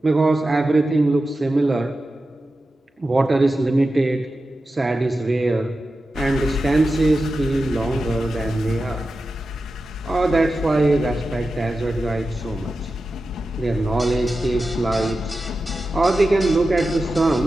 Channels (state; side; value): normal; both; correlation 0.92